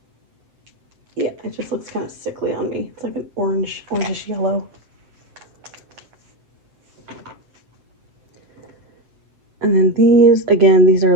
Yeah, it just looks kind of sickly on me. It's like an orangish yellow. And then these, again, these are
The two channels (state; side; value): late; left; 7.8 ms